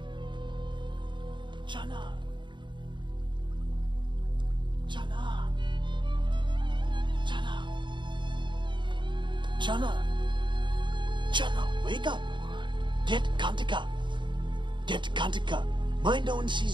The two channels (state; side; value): late; left; 0.23 ms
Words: Jana. Jana. Jana. Jana. Jana, wake up. Get Kantika. Get Kantika. Mind no one